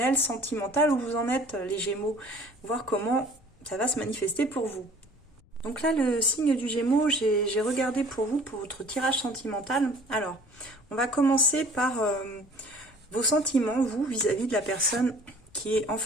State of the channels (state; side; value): noise; left; rumble, 27 dB below the sound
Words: sentimental, où vous en êtes les Gémeaux, voir comment ça va se manifester pour vous. Donc là, le signe du Gémeaux, j'ai regardé pour vous, pour votre tirage sentimental. Alors, on va commencer par vos sentiments, vous, vis-à-vis de la personne qui est en